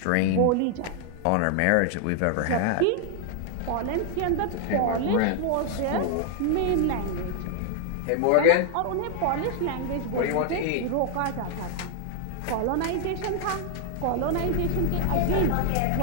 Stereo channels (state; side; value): different; both; correlation 0.00